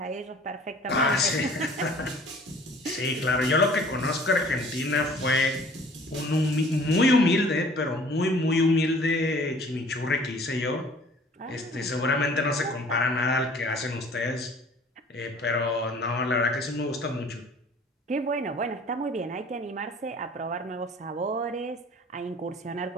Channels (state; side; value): normal; both; correlation 0.51